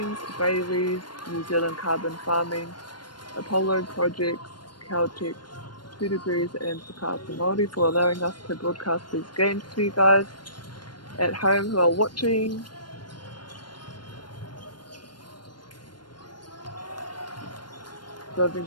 Bailey's, New Zealand Carbon Farming, Apollo Projects, Caltex, 2 Degrees, and Whakaata Māori for allowing us to broadcast these games to you guys at home who are watching. So I've been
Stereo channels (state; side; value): late; right; 0.71 ms